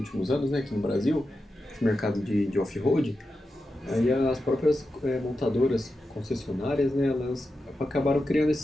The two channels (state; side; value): normal; both; correlation 0.90